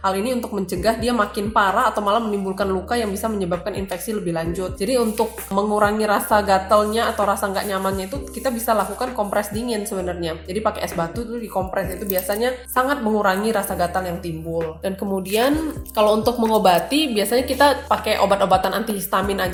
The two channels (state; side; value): identical; both; correlation 1.00